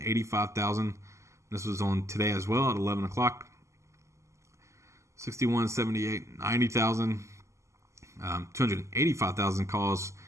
This was on today as well at 11 o'clock. 61.78, 90,000. 285,000 calls,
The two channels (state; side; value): late; left; 0.14 ms